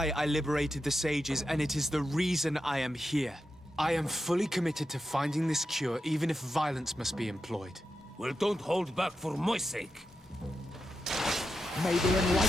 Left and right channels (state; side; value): normal; both; correlation 0.88